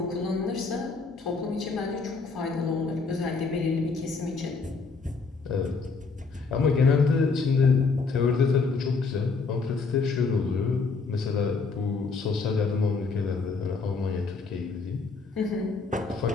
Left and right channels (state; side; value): quieter; right; 4.4 dB